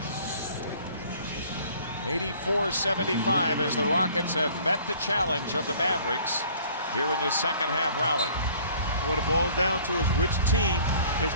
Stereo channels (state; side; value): inverted; both; correlation -0.54